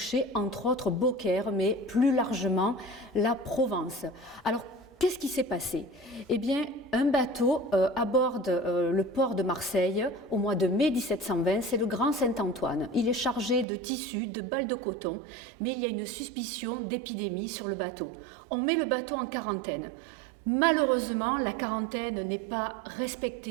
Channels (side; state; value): left; drops out; at 13.7 s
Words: entre autres Beaucaire, mais plus largement la Provence. Alors, qu'est-ce qui s'est passé? Un bateau aborde le port de Marseille au mois de mai 1720, c'est le Grand Saint-Antoine. Il est chargé de tissus, de balles de coton, mais il y a une suspicion d'épidémie sur le bateau. On met le bateau en quarantaine. Malheureusement, la quarantaine n'est pas